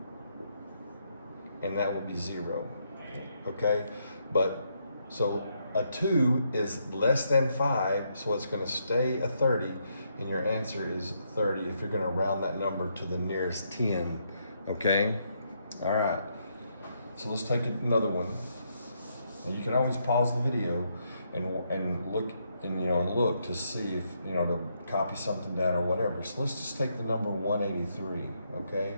and that will be 0. Okay, but so a 2 is less than 5, so it's going to stay a 30, and your answer is 30 if you're going to round that number to the nearest 10. Okay, all right. So let's take another one. And you can always pause the video and look and look to see if to copy something down or whatever. So let's just take the number 183. Okay,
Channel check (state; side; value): inverted; both; correlation -0.77